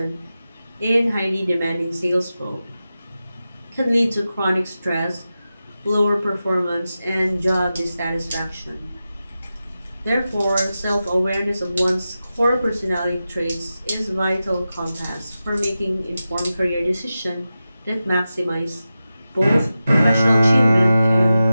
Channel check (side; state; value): both; inverted; correlation -0.92